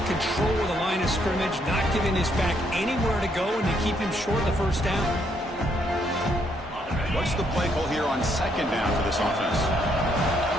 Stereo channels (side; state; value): both; normal; correlation 0.72